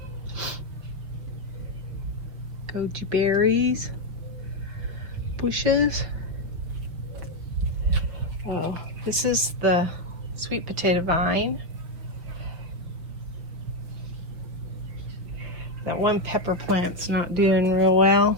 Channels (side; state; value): left; late; 5.8 ms